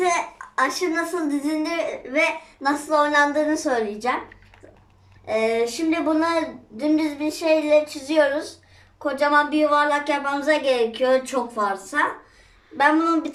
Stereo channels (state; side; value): identical; both; correlation 1.00